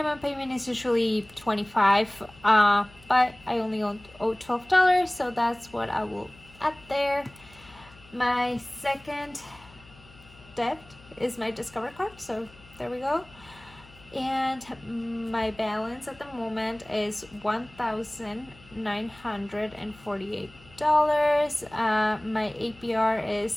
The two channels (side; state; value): left; noise; hum, 24 dB below the sound